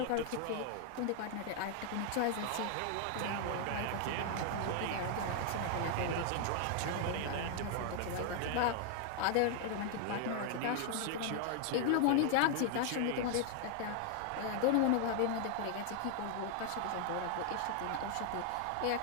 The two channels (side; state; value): both; different; correlation 0.00